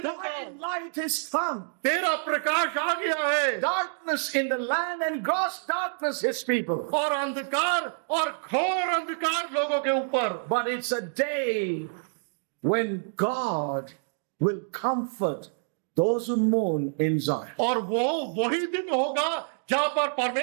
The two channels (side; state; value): left; silent; digital silence